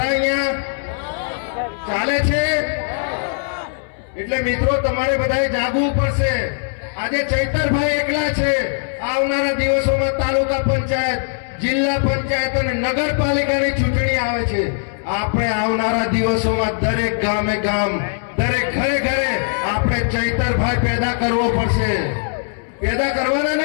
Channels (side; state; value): right; silent; 62 dB below the other